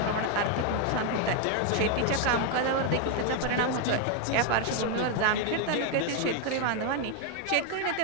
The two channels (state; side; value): different; both; correlation 0.01